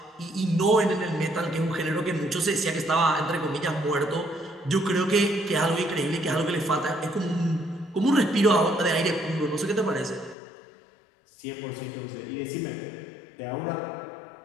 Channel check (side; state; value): right; drops out; at 10.4 s